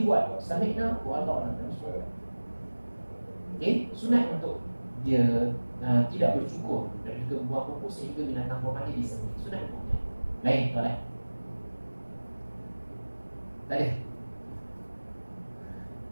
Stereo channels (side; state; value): both; inverted; correlation -1.00